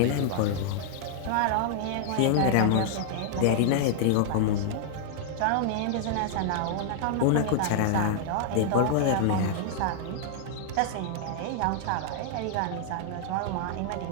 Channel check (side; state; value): both; different; correlation -0.01